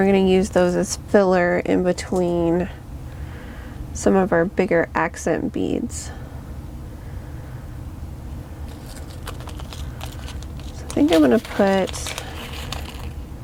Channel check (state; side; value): identical; both; correlation 1.00